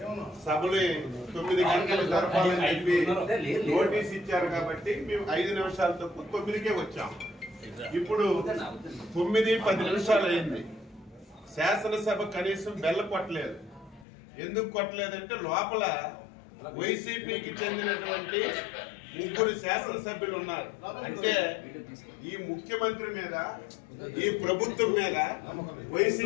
సభలు 9 గంటలు జరపాలని చెప్పి నోటీస్ ఇచ్చారు కాబట్టి మేము 5 నిమిషాలు తక్కువ 9కే వచ్చాం. ఇప్పుడు 9:10 నిమిషాలు అయింది. శాసనసభ కనీసం బెల్ల కొట్టలేదు. ఎందుకు కొట్టలేదంటే లోపల వైసీపీకి చెందినటువంటి 3 శాసనసభ్యులు ఉన్నారు. అంటే ఈ ముఖ్యమంత్రి మీద, ఈ ప్రభుత్వం మీద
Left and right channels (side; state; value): right; drops out; at 14.1 s